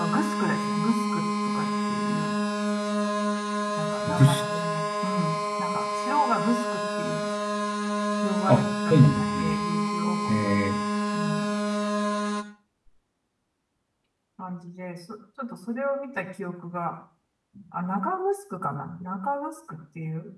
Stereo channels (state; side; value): identical; both; correlation 1.00